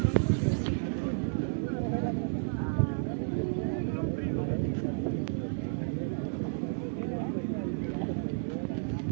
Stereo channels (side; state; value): left; silent; 57 dB below the other